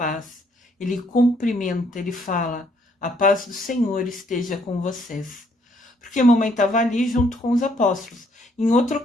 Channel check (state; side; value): normal; both; correlation 0.68